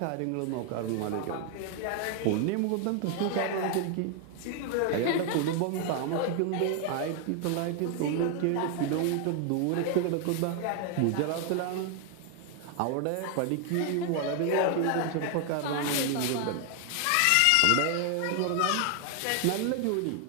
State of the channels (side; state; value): both; different; correlation 0.00